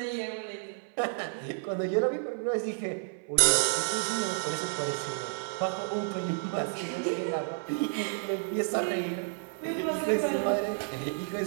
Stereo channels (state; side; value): silent; left; 57 dB below the other